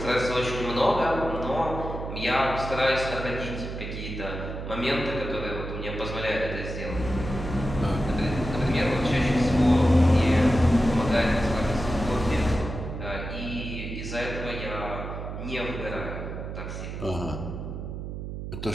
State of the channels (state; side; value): noise; right; hum, 7 dB below the sound